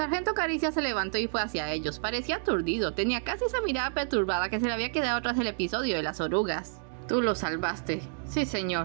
Caricia se levantó y fue hacia ellos. Parecía aturdido. Tenía casi esa mirada perturbada que se le había quedado tras el episodio de las orugas. Tú lo salvaste. Sí,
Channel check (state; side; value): silent; left; digital silence